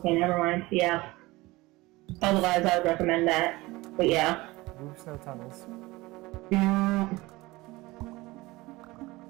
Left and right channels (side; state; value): left; quieter; 20.9 dB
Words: never mind. Yeah. Otherwise, I would recommend that. But yeah. Oops, no tunnels.